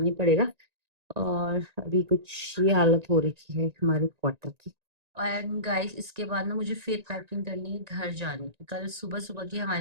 ही पड़ेगा। और अभी कुछ ये हालत हो रखी है हमारे क्वार्टर की। एंड गाइस इसके बाद ना मुझे फिर पैकिंग करनी है घर जाने की, कल सुबह सुबह की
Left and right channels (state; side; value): late; left; 1.9 ms